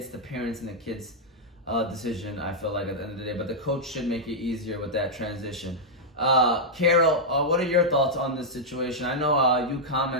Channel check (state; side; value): normal; both; correlation -0.06